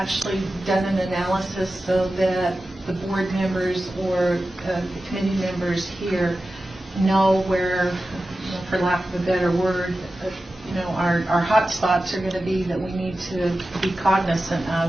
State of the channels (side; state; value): both; normal; correlation 0.94